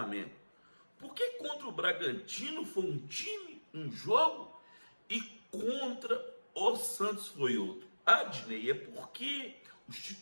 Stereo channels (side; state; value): both; inverted; correlation -1.00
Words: Porque contra o Bragantino foi um time, um jogo, e contra o Santos foi outro. Adnei, é porque os